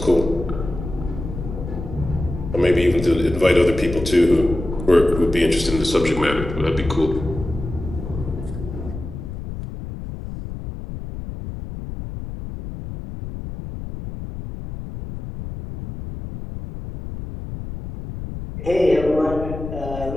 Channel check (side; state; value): left; noise; rumble, 8 dB below the sound